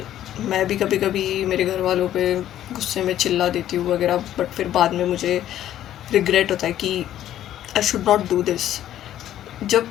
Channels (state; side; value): quieter; right; 12.0 dB